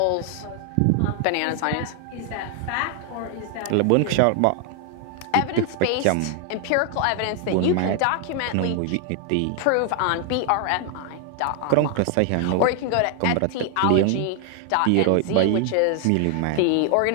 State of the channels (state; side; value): different; both; correlation 0.00